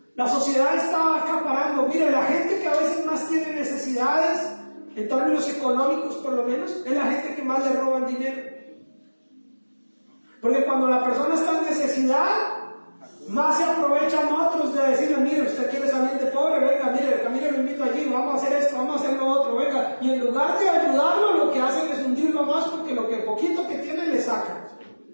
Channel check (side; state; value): both; inverted; correlation -1.00